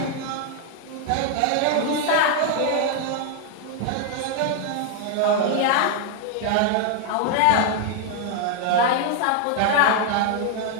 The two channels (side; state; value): both; different; correlation 0.00